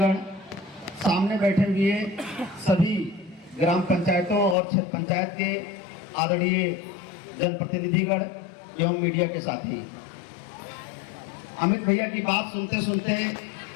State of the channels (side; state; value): right; drops out; at 4.5 s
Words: सामने बैठे हुए सभी ग्राम पंचायतों और क्षेत्र पंचायत के आदरणीय जनप्रतिनिधिगण एवं मीडिया के साथी। अमित भैया की बात सुनते सुनते